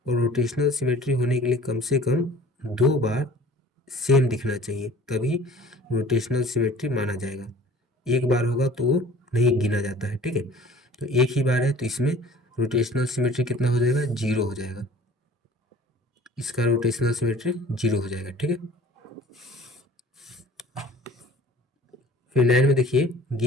और रोटेशनल सिमेट्री होने के लिए कम से कम 2 बार सेम दिखना चाहिए, तभी रोटेशनल सिमेट्री माना जाएगा। एक बार होगा तो वो नहीं गिना जाता है। ठीक है, तो एक ही बार है तो इसमें रोटेशनल सिमेट्री कितना हो जाएगा? 0 हो जाएगा, इसका रोटेशनल सिमेट्री 0 हो जाएगा। ठीक है, फिर 9 में देखिए,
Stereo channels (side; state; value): both; normal; correlation 0.46